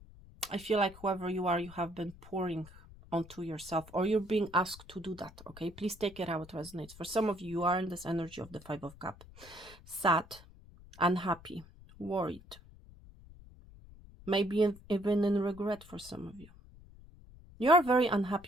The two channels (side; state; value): left; noise; rumble, 20 dB below the sound